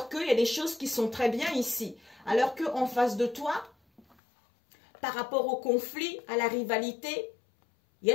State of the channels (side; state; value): right; drops out; at 4.2 s